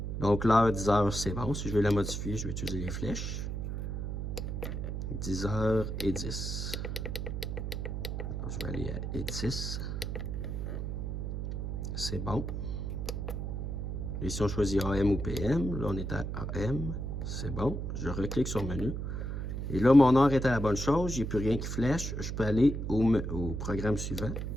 Donc, l'heure 10h, c'est bon. Si je veux la modifier, je vais utiliser les flèches. 10h10. Alors, je vais aller à 10. C'est bon. Et si on choisit AM ou PM, là, on est à AM. C'est bon. Je reclique sur le menu. Et là, mon heure est à la bonne chose. J'ai plus rien qui flèche. Je peux aller au programme suivant.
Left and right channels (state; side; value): noise; right; hum, 3 dB below the sound